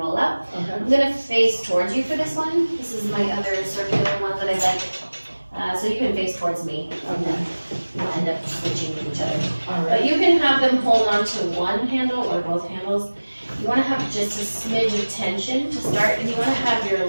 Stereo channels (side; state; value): both; inverted; correlation -1.00